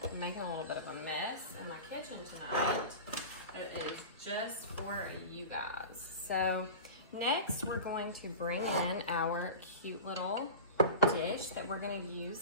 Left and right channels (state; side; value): inverted; both; correlation -0.31